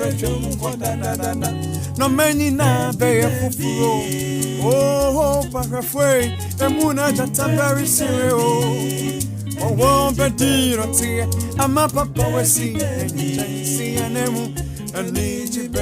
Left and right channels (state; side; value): identical; both; correlation 1.00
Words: No many na be for fro. Oh, parafway, the moon at the very serious. Oh, won't be dear, I'm a papa, we see an emu, and need you,